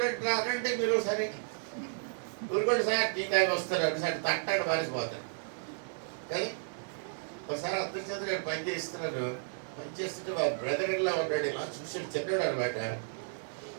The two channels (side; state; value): left; silent; 56 dB below the other